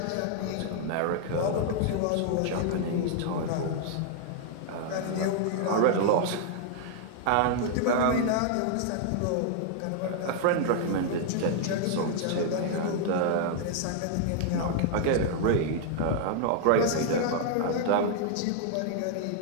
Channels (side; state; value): both; different; correlation 0.00